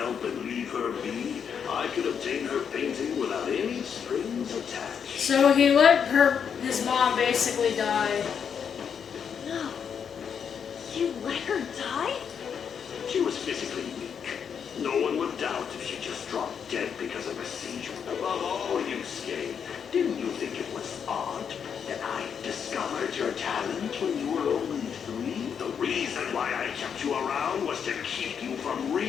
and leave her be, I could obtain her painting without any strings attached. So he let his mom basically die. No. You let her die? She was physically weak. No one would doubt if she just dropped dead because of a seizure. Above all, Yusuke, didn't you think it was odd that I discovered your talent when you were only 3? The reason why I kept you around was to keep you from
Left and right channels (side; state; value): right; quieter; 7.3 dB